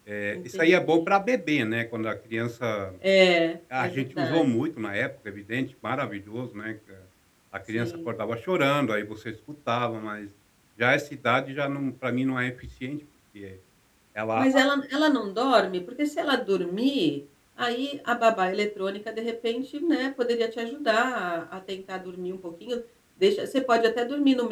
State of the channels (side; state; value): both; identical; correlation 1.00